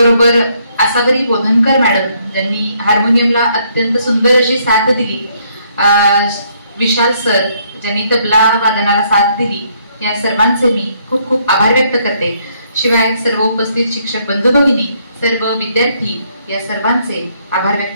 आसावरी बोधनकर मॅडम ज्यांनी हार्मोनियमला अत्यंत सुंदर अशी साथ दिली, विशाल सर ज्यांनी तबला वादनाला साथ दिली, या सर्वांचे मी खूप खूप आभार व्यक्त करते. शिवाय सर्व उपस्थित शिक्षक बंधू भगिनी, सर्व विद्यार्थी या सर्वांचे आभार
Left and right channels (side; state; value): both; inverted; correlation -0.70